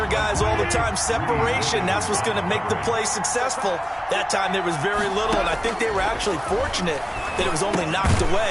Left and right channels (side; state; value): both; identical; correlation 1.00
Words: guys all the time. Separation, that's what's going to make the play successful. That time there was very little, and I think they were actually fortunate that it was only knocked